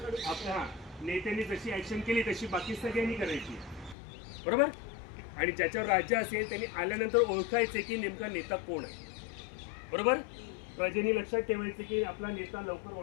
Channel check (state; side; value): drops out; right; at 4.0 s